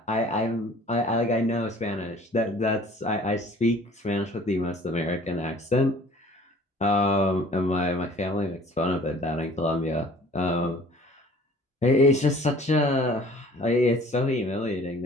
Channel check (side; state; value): both; normal; correlation 0.50